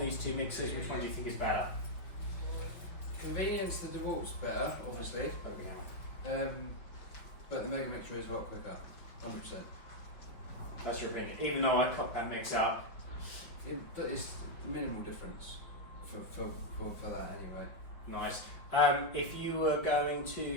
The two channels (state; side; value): late; right; 5.4 ms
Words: two mixers? Which one do you think is better? Convenience, the Dewalt's better, obviously. But the Megamixer is a lot quicker, 100%. That's your opinion, even though I cocked that mix up. It's minimal difference for that anyway. Nice. If you were going